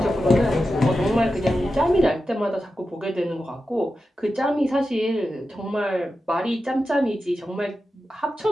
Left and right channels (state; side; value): normal; both; correlation 0.91